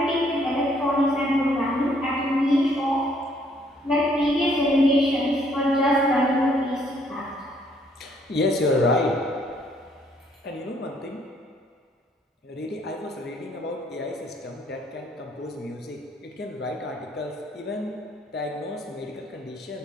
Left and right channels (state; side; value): normal; both; correlation 0.66